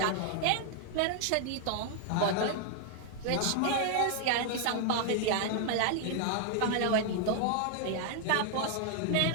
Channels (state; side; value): different; both; correlation 0.00